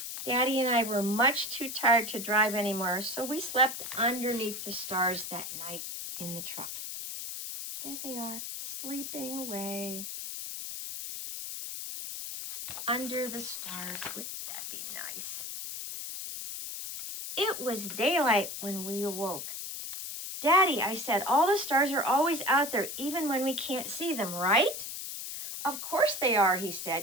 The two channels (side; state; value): left; noise; hiss, 7 dB below the sound